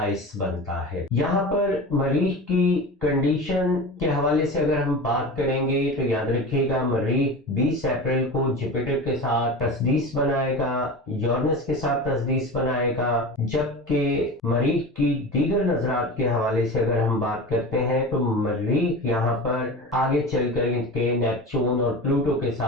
बनता है। यहाँ पर मरीख की कंडीशन के हवाले से अगर हम बात करेंगे तो याद रखिएगा, मरीख 20 अप्रैल को जुपिटर के साथ तस्दीस बनाएगा, यूरेनस के साथ तस्दीस बनाएगा। जबकि मरीख की दीगर नजरात के हवाले से अगर हम बात करते हैं तो मरीख यहाँ पर आगे चल कर के नेपच्यून और प्लूटो के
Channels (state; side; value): normal; both; correlation 0.30